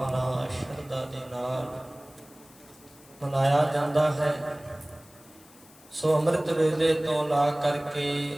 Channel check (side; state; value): left; noise; hiss, 25 dB below the sound